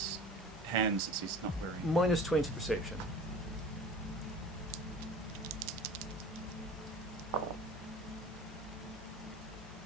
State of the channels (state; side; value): normal; both; correlation 0.40